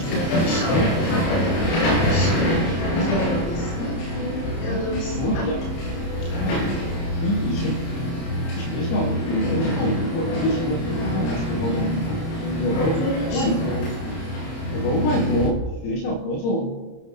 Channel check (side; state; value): right; late; 30 ms